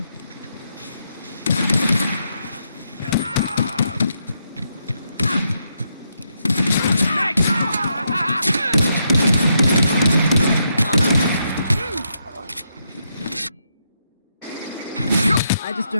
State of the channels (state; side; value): inverted; both; correlation -0.80